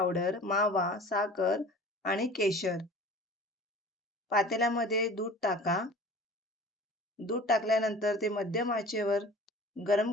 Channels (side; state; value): both; normal; correlation 0.42